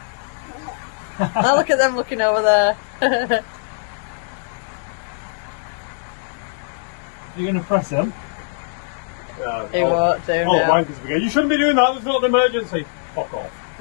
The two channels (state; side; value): silent; right; digital silence